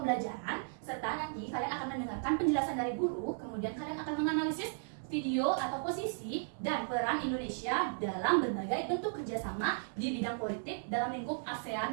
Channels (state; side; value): silent; left; digital silence